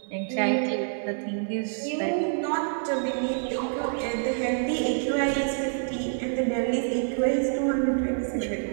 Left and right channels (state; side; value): silent; left; digital silence